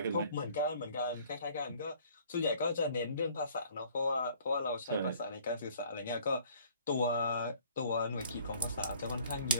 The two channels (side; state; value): both; inverted; correlation -0.56